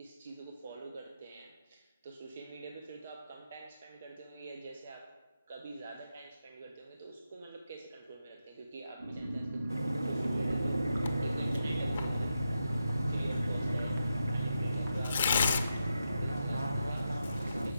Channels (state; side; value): inverted; both; correlation -0.86